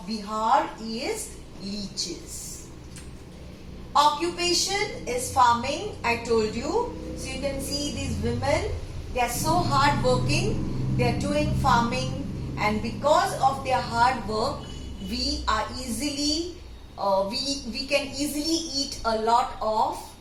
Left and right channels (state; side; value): identical; both; correlation 1.00